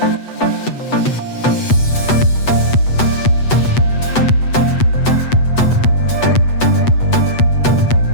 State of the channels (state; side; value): late; right; 8.0 ms